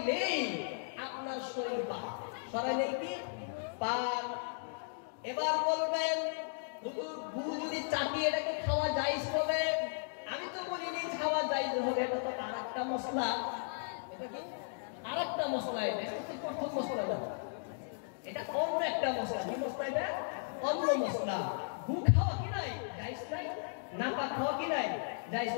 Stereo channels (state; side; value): silent; right; digital silence